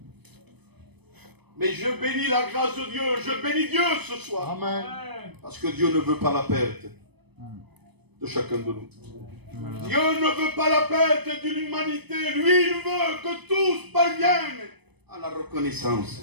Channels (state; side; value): late; left; 0.99 ms